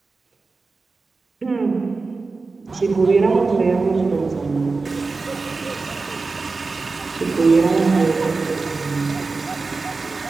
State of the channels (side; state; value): left; quieter; 4.0 dB